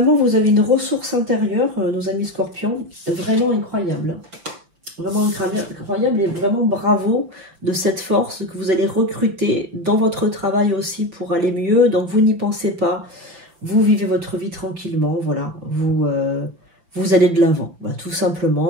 vous avez une ressource intérieure, nos amis scorpions, vraiment incroyable. Vraiment incroyable et vraiment bravo de cette force que vous allez recruter dans votre travail aussi pour aller mieux. Donc vous n'y pensez pas, vous vivez votre vie tranquillement, voilà, vous allez de l'avant, bah, tout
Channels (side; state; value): left; late; 5.9 ms